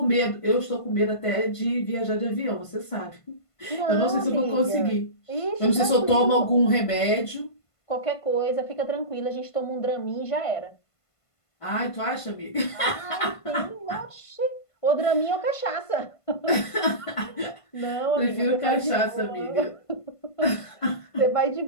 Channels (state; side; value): late; right; 1.5 ms